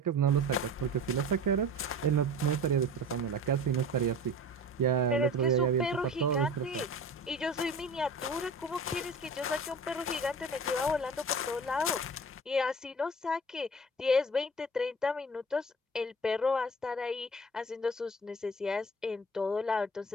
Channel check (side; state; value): both; normal; correlation 0.39